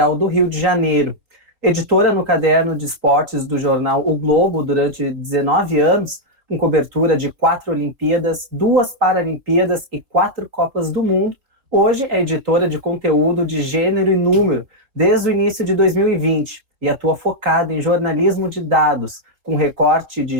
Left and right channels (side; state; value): left; late; 3.7 ms